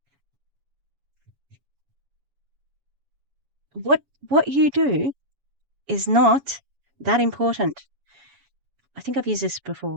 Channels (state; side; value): late; left; 7.0 ms